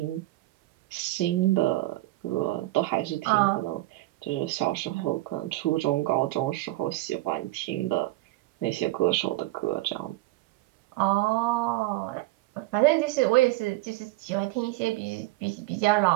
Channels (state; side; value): quieter; left; 18.8 dB